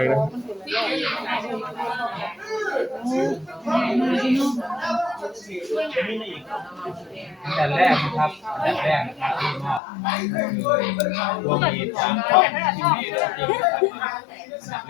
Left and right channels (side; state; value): right; drops out; at 9.8 s